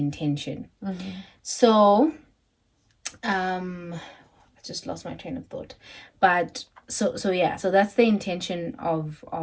So I just lost my train of thought. But so yeah, so that's the intention of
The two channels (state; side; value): identical; both; correlation 1.00